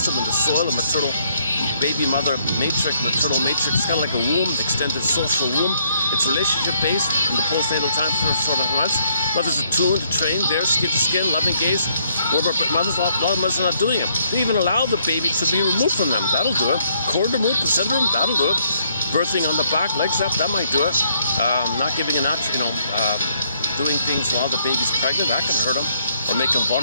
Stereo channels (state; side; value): inverted; both; correlation -0.70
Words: in the soil, a maternal baby mother matrix, maternal matrix. It's kind of like a womb, extended social womb. It's relationship-based in the postnatal time for sort of months. Mothers are tuned to train, there, skin to skin, loving gaze. A lot of mothers are not doing it. They even allow the baby to be removed from them. That'll do it. Cord removed, placenta removed, that'll do it. Birthing on the back, legs up, that might do it. Not giving a notch, doing things while the baby's pregnant, that can hurt them. Or make him